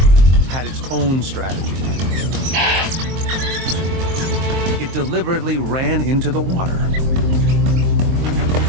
had its own strategy. It deliberately ran into the water.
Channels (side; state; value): left; late; 23 ms